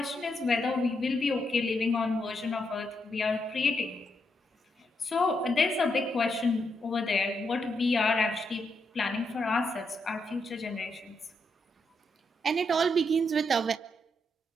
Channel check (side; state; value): both; normal; correlation 0.80